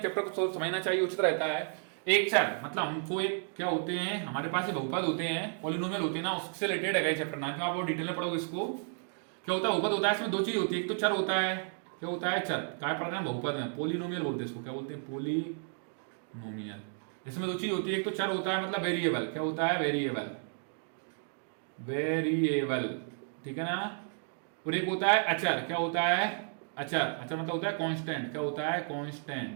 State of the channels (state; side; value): silent; left; 56 dB below the other